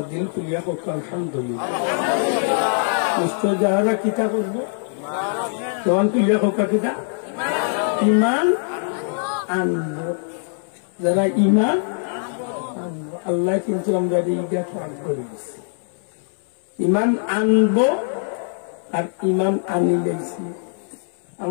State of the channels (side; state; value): right; silent; 62 dB below the other